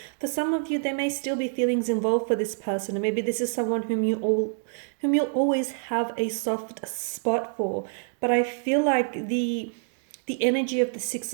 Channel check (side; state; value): left; silent; 60 dB below the other